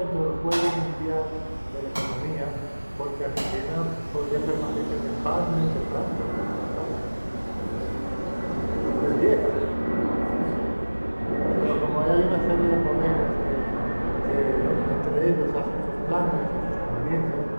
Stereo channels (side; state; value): both; inverted; correlation -1.00